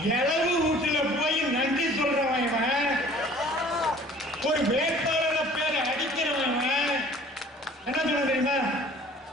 இளவு வீட்டுல போய் நன்றி சொல்றவன் இவன். ஒரு வேட்பாளர பேரை அடிக்கிறவன் என்ன சொல்ல தெரியுமா?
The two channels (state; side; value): normal; both; correlation 0.51